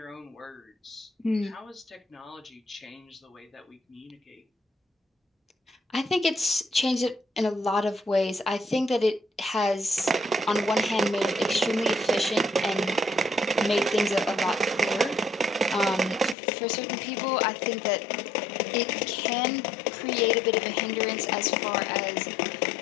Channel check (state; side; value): drops out; right; at 16.4 s